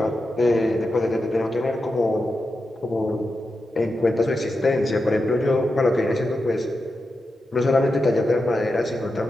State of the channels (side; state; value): both; normal; correlation 0.89